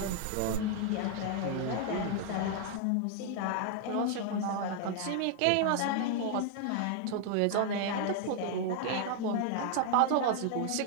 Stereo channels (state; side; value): different; both; correlation 0.00